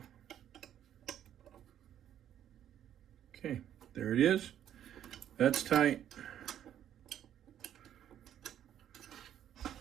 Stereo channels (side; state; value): left; quieter; 10.5 dB